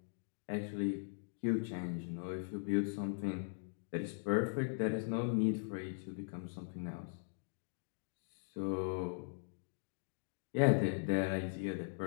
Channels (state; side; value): silent; right; digital silence